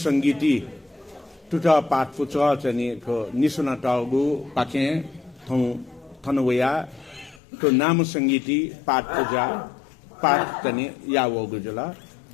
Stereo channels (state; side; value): drops out; right; at 7.4 s